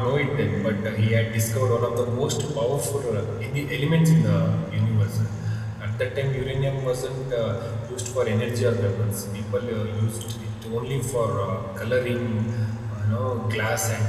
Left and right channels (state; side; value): identical; both; correlation 1.00